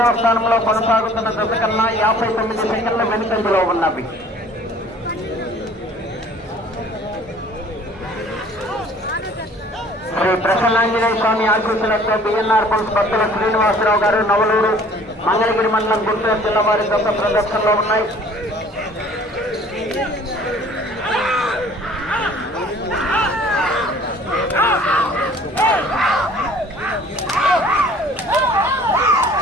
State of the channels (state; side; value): normal; both; correlation 0.52